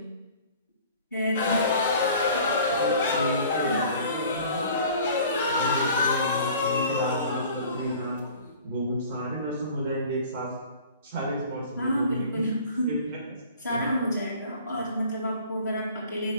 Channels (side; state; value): both; inverted; correlation -0.47